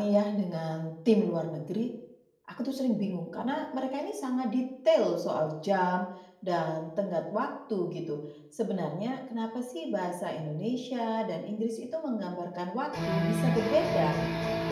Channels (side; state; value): both; identical; correlation 1.00